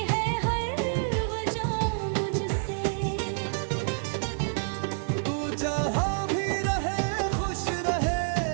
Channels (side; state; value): left; silent; digital silence